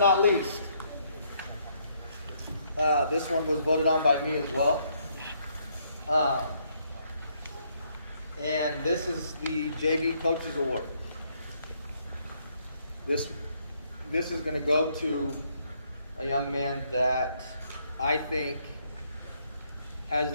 least, this one was voted on by me as well. And this is the JV Coaches Award. This is going to go to a young man that I think has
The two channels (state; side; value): inverted; both; correlation -0.71